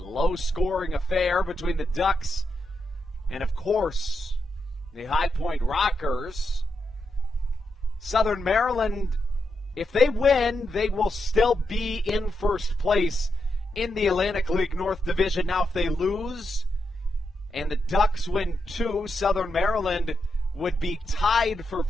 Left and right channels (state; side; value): normal; both; correlation 0.84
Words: low-scoring affair between the Ducks and, of course, the High Point Rockers. Southern Maryland, if they win, they will still be in first place in the Atlantic League North Division. Now, if they lose and the Ducks win too, Southern Maryland would be tied for